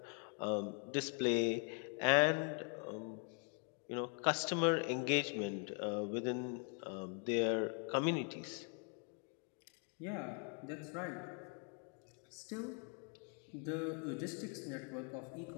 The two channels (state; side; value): quieter; right; 38.6 dB